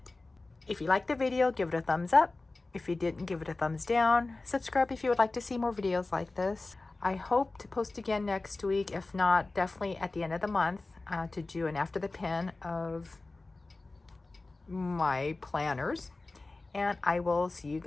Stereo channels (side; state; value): right; quieter; 3.3 dB